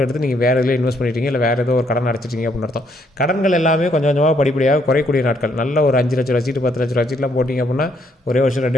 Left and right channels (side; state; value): both; normal; correlation 0.70